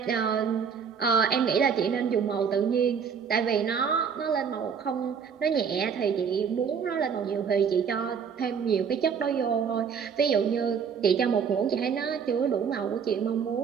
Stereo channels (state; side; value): quieter; left; 6.7 dB